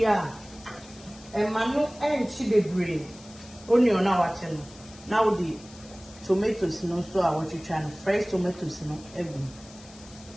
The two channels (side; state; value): left; noise; hiss, 21 dB below the sound